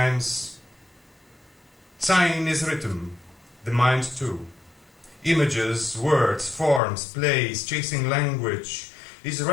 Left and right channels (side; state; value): right; drops out; at 6.8 s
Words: Sign is rhythm, the mind too. Images, words, forms, plays, chasing language, is